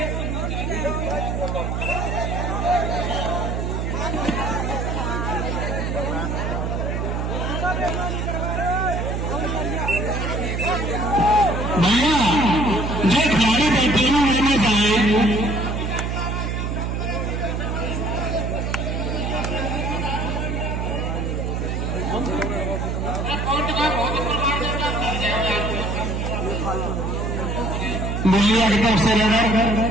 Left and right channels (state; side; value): noise; right; hum, 1 dB below the sound